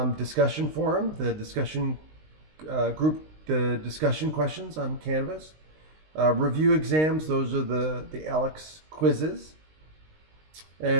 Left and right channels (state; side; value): late; left; 19 ms